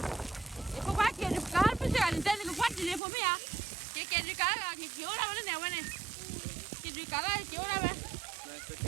E po qua che il calpo si ha intende che fatti le pomia. Che di cara che ora va ne va ne. Che di cara che ora va.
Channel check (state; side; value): drops out; left; at 3.0 s